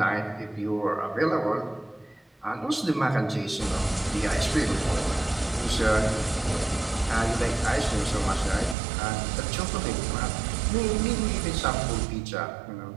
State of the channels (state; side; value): drops out; left; at 8.8 s